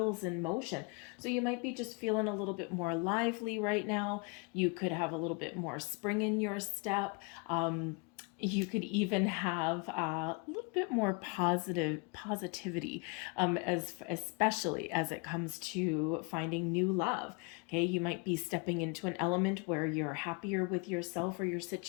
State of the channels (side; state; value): right; quieter; 30.9 dB